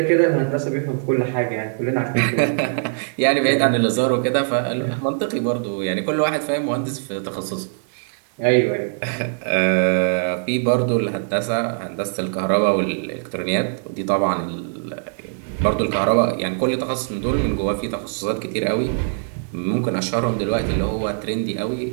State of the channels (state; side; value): silent; left; 64 dB below the other